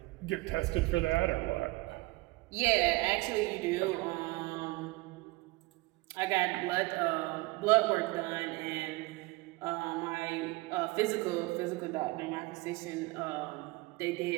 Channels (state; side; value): quieter; left; 22.5 dB